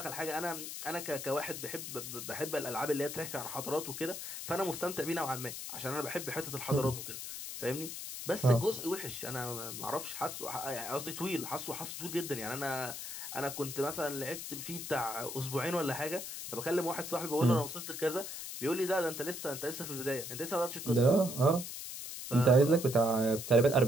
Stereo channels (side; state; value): left; noise; hiss, 7 dB below the sound